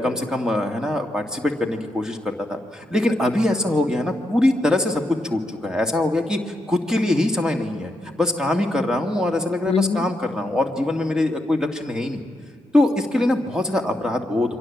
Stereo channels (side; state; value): both; normal; correlation 0.83